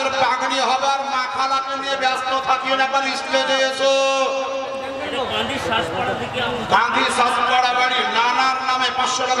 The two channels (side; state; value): both; identical; correlation 1.00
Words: পাগড়ি হবে আর মাখালাকে নিয়ে ব্যস্ত থাকিও না, একবার স্টেজে এসো। গান্ধী শাসপাড়া বাড়ি নানার নামে 500